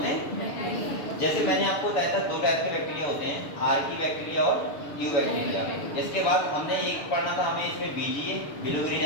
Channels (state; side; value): late; right; 6.8 ms